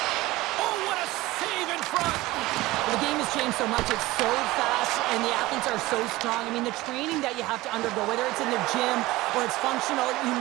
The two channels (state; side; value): quieter; left; 19.0 dB